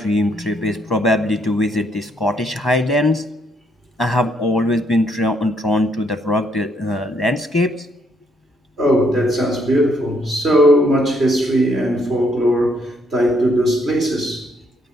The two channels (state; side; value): normal; both; correlation 0.71